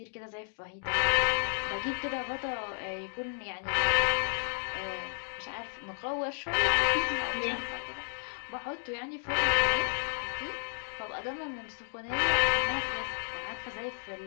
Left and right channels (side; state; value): right; silent; 56 dB below the other